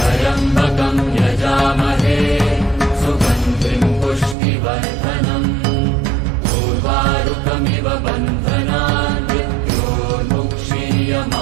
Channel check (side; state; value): left; drops out; at 4.4 s